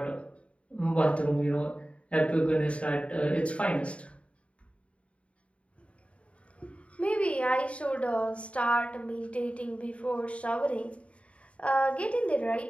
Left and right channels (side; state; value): right; late; 0.063 ms